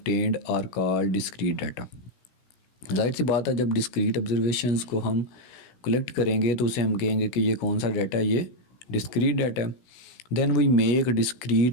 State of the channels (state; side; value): late; right; 16 ms